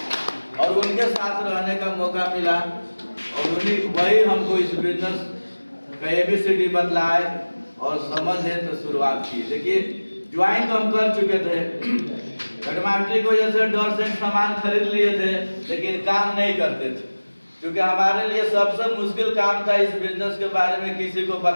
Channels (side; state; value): both; inverted; correlation -1.00